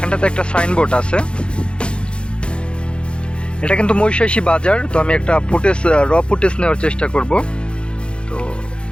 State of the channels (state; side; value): late; right; 0.055 ms